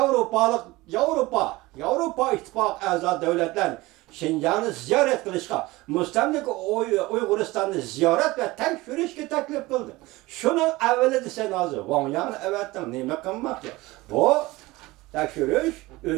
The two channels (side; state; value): left; quieter; 20.4 dB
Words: Yevropa ittifoq a'zo davlatlar Şinjan'ı ziyorat qilishga, mustamlik Uyg'uristonni ziyorat va tekshirishga taklif qildi. Shuni avvali desen hozir Wang Yangni avatdan nima qilmoqchi? Bu tekshirish